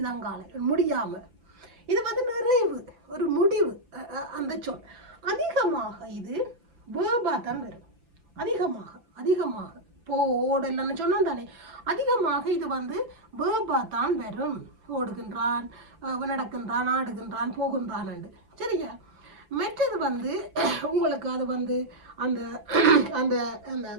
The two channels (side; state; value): left; late; 5.9 ms